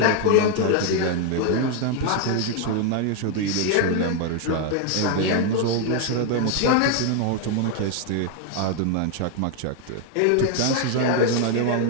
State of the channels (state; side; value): different; both; correlation 0.01